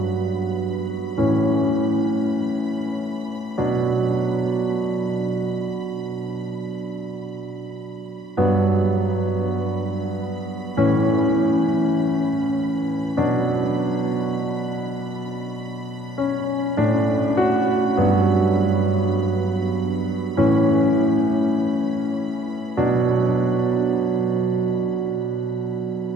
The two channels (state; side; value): normal; both; correlation 0.63